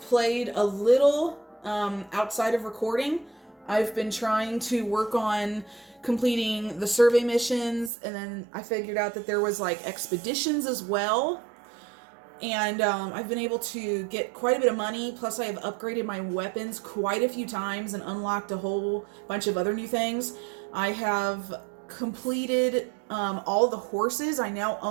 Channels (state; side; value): drops out; left; at 7.9 s